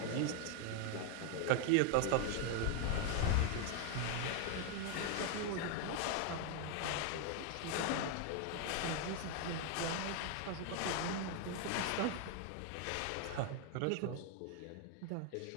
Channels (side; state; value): both; different; correlation 0.01